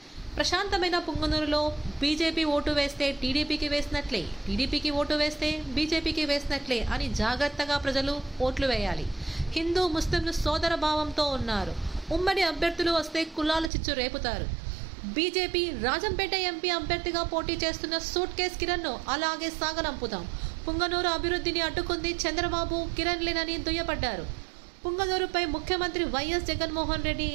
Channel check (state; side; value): drops out; left; at 13.7 s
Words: ప్రశాంతమైన పుంగనూరులో బీజేపీ ఓటు వేస్తే టీడీపీకి వేసినట్లే, టీడీపీకి ఓటు వేస్తే బీజేపీకి వేసినట్లే అని జాగ్రత్తగా ప్రజలు ఓట్లు వేయాలి. హిందూ ముస్లింలు సోదర భావంతో ఉన్నారు. ఉమ్మడి అభ్యర్థులు వస్తే కులాల చిచ్చు రేపుతారు. బీజేపీ రాజంపేట ఎంపీ అభ్యర్థిగా పోటీ చేస్తున్న సూట్ కేస్ కిరణ్ను అలాగే సాగనంపుతాం. పుంగనూరు అభివృద్ధిని అడ్డుకుంది చంద్రబాబు, కిరణ్ లేనని దుయ్యబడ్డారు. పుంగనూరుపై ముఖ్యమంత్రి వైఎస్ జగన్మోహన్ రెడ్డి